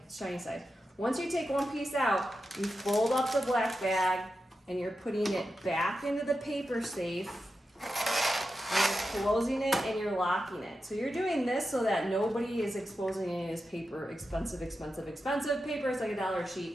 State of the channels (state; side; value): normal; both; correlation 0.90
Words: shiny side. Once you take one piece out, you fold up the black bag, and you're putting it back into the paper safe. And you're closing it and you're locking it. So you're doing this so that nobody is exposing any of this paper, expensive paper. It's like $1 a